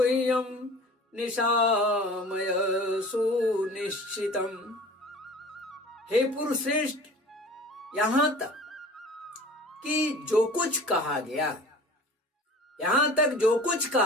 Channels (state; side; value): normal; both; correlation 0.42